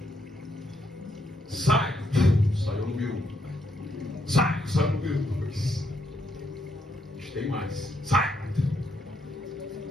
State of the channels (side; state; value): both; normal; correlation 0.76